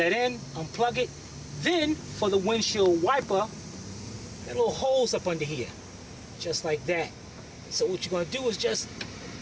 in, unplug it. Then, for the windshield wiper, that little holes up under here. Just like that. So what you're gonna do is just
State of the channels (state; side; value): identical; both; correlation 1.00